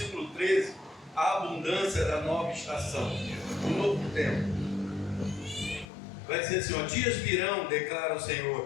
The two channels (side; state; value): right; drops out; at 5.9 s